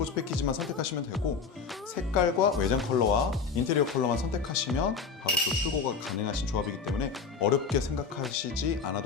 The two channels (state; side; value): quieter; right; 5.4 dB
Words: 패키지만 선택하시면 되고, 색깔과 외장 컬러와 인테리어 컬러만 선택하시면 바로 또 출고가 가능하신 조합이기 때문에 어렵게 생각하시지